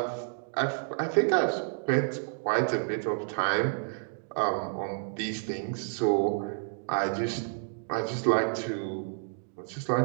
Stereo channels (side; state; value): left; silent; digital silence